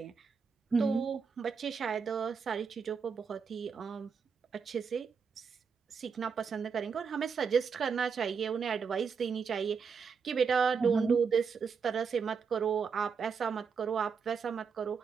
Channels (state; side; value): quieter; left; 5.9 dB